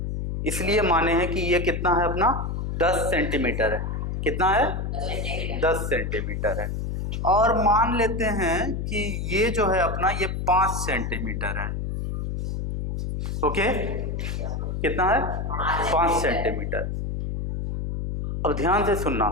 इसलिए माने हैं कि ये कितना है अपना 10 सेंटीमीटर है। कितना है? 10 सेंटीमीटर है। और मान लेते हैं कि ये जो है अपना ये 5 सेंटीमीटर है। ओके, कितना है? 5 सेंटीमीटर। अब ध्यान से सुनना,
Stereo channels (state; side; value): noise; left; hum, 3 dB below the sound